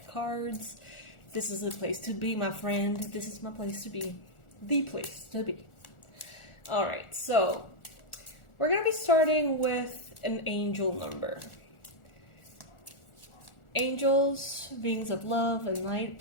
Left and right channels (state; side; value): late; right; 1.4 ms